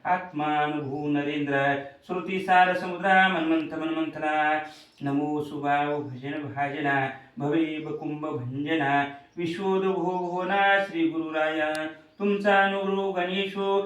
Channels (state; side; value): identical; both; correlation 1.00